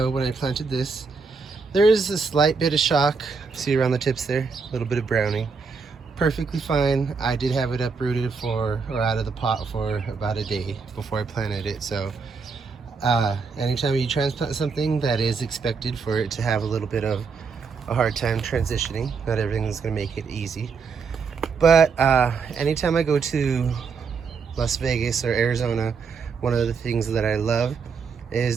when I planted this. There is a slight bit of shock, see around the tips there, a little bit of browning. Perfectly fine. I did have it uprooted out of the pot for about a day before I planted it. So anytime you transplant something, that is expected for it to have a little bit of a hard time transitioning. Not everything is going to make it easy. But anytime I go to Las Vegas or Arizona, one of the things that I love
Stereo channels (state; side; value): quieter; left; 5.2 dB